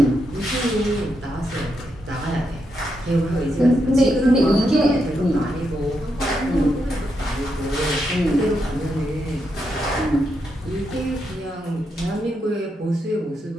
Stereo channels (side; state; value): both; normal; correlation 0.82